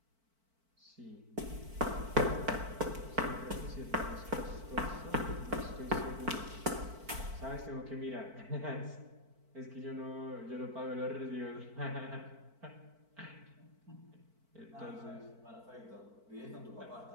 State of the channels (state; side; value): late; left; 4.5 ms